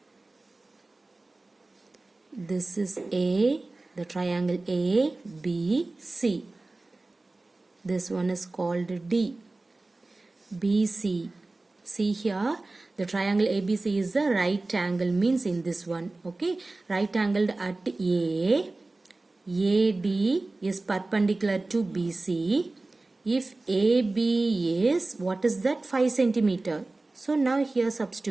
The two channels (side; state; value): left; quieter; 3.1 dB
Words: This is A, the triangle A, B, C. This one is called D. BC. See here, the triangle ABC is the right angle, means in this one. Okay, right angled at A. AD is perpendicular to BC. If AB is, what is that? 5 centimeter. So now here